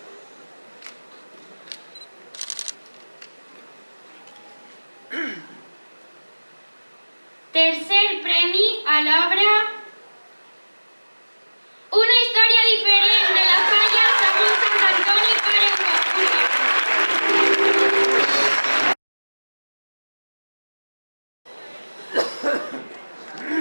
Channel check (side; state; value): both; inverted; correlation -1.00